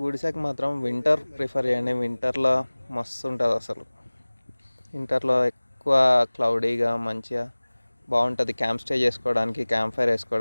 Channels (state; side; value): inverted; both; correlation -1.00